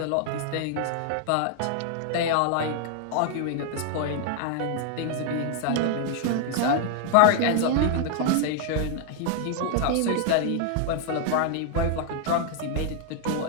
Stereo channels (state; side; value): different; both; correlation 0.00